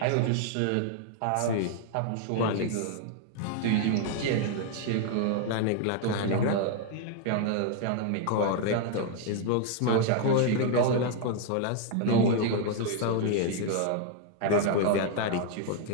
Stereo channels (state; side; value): different; both; correlation 0.00